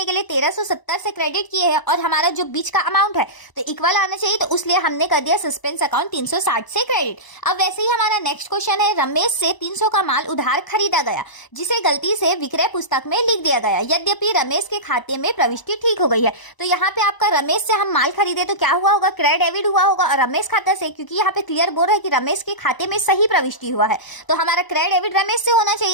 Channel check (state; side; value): late; right; 1.0 ms